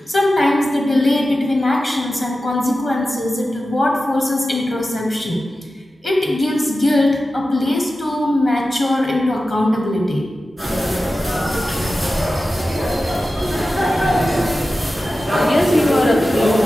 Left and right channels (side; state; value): both; normal; correlation 0.94